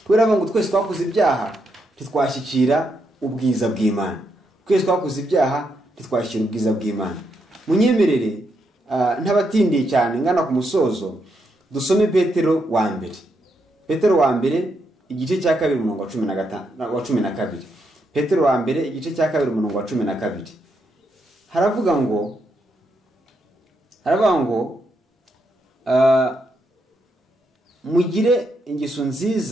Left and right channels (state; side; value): normal; both; correlation 0.80